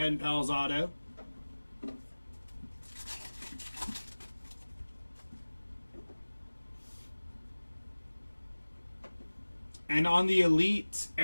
Pals auto. And on the Elite,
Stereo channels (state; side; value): inverted; both; correlation -1.00